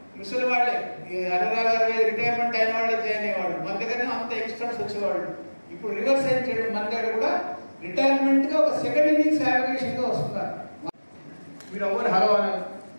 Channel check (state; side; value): inverted; both; correlation -1.00